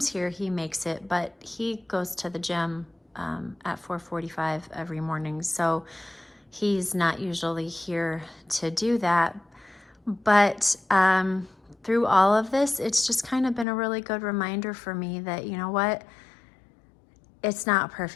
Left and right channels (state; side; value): drops out; right; at 13.7 s